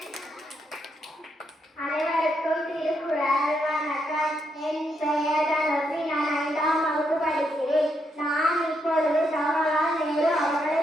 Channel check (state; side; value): normal; both; correlation 0.79